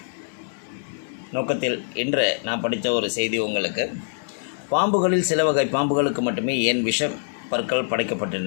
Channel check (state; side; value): silent; right; digital silence